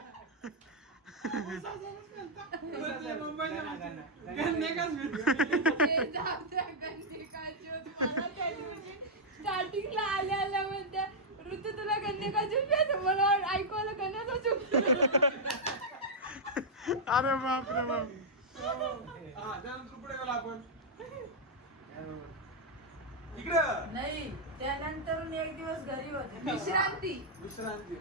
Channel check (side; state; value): both; normal; correlation -0.04